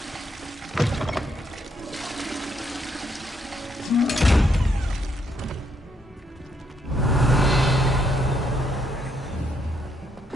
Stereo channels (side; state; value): both; normal; correlation 0.75